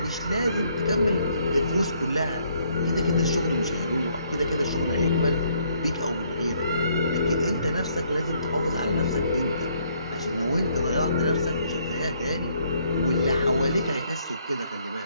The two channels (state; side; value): inverted; both; correlation -0.68